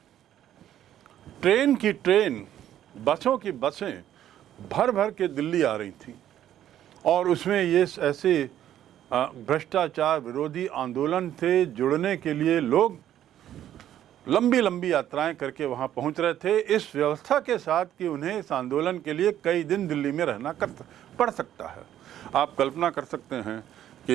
ट्रेन की ट्रेन, बसों की बसें भर भर के दिल्ली आ रही थी। और उसमें ये ऐसे भ्रष्टाचार विरोधी आंदोलन से जुड़ने के लिए लोग लंबी लंबी यात्राएं करके वहां पहुंच रहे थे, इस व्यवस्था के साथ कि उन्हें इस आंदोलन के लिए कई दिन दिल्ली में रहना पड़ सकता है। आप कल्पना कर सकते हैं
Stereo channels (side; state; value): left; quieter; 11.4 dB